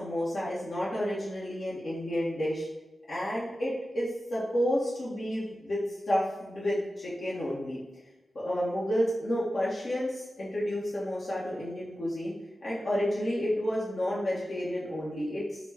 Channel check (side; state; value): both; normal; correlation 0.93